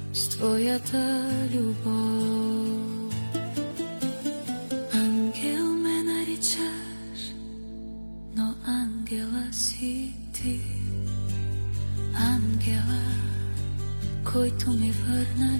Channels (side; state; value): both; inverted; correlation -1.00